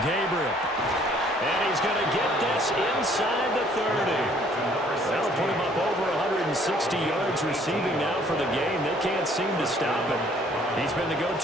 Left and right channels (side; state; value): both; normal; correlation 0.60